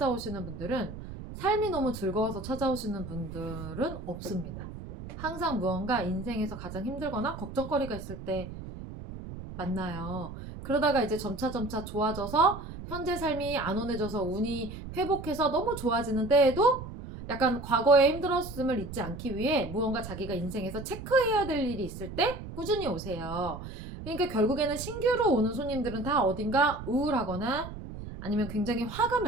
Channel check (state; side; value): noise; right; rumble, 10 dB below the sound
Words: 분들은 삶이 너무 즐거워서 찾아오시는 분들은 없습니다. 항상 무언가 인생에서 가장 힘들거나 걱정거리가 있을 때 만나요. 그러다가 이제 점차 좋아져서 현재 삶이 안온해져서 운이 회복해서 너무 좋아지는 때에도 약간 과거의 힘들었음을 잊지 않기 위해 무언가 자기가 인생에서 체크해야 될 일이 있을 때 꾸준히 오세요. 그러니까 결국에는 신규로 오는 손님들은 다 어딘가 우울하거나 아니면 굉장히 화가